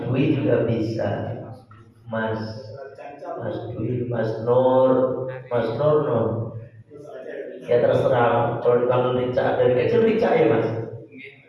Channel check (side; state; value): both; identical; correlation 1.00